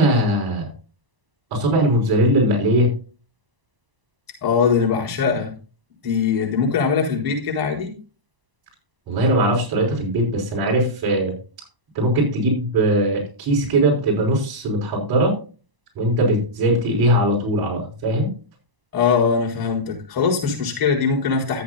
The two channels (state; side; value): late; left; 1.0 ms